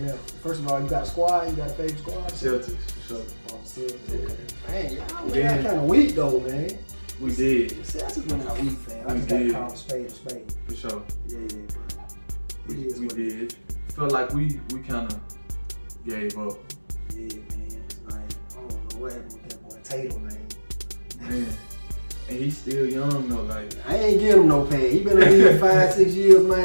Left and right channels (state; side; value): inverted; both; correlation -1.00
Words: First of all, you got a squad? You got a favorite squad? Celtics, for sure. Celtics, okay. Man, y'all went Yeah. out kind of weak though, man. We did. Celtics went out weak, fam. I We just got to did. call a spade a spade. For sure. Yeah, bro. We It is what it did. Felt like we kind of gave up. Yeah, man. Like, I don't know what happened with that boy Tatum, man. Man. And he's still young though, like. I ain't give him no pay. He been in the league 5-6 years,